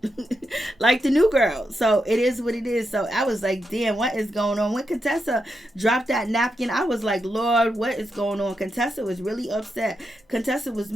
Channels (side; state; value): both; normal; correlation 0.85